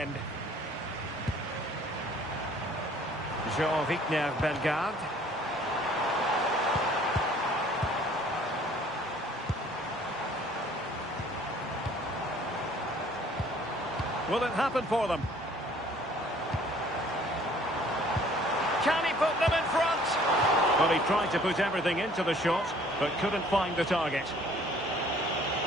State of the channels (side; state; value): both; normal; correlation 0.56